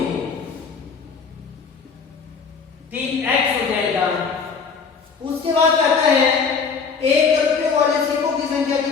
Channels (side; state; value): right; quieter; 5.5 dB